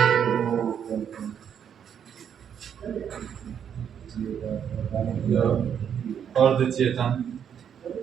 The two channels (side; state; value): left; quieter; 8.4 dB